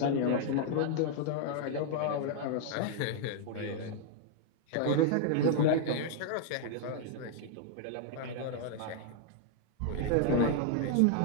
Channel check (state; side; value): different; both; correlation 0.00